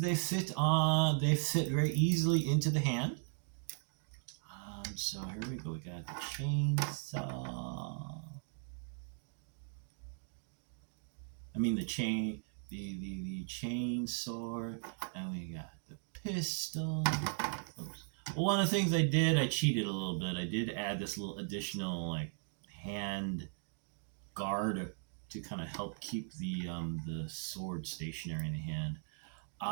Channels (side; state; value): left; silent; 53 dB below the other